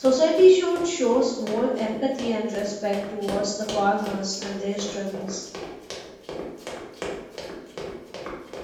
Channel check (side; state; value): both; identical; correlation 1.00